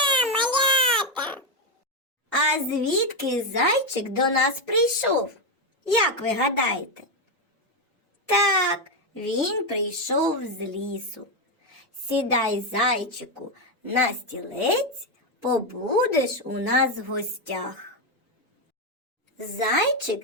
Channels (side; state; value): both; normal; correlation 0.07